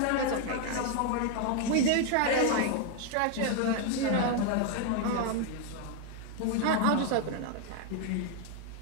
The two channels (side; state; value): both; different; correlation 0.01